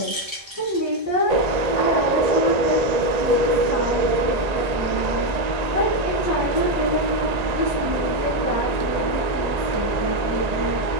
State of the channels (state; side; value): late; left; 1.8 ms